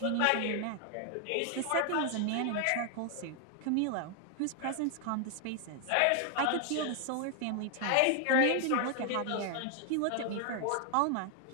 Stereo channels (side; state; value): both; different; correlation 0.00